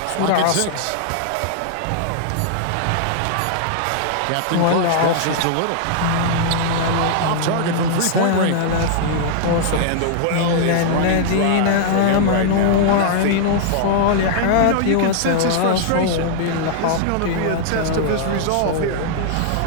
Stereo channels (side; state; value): both; different; correlation -0.01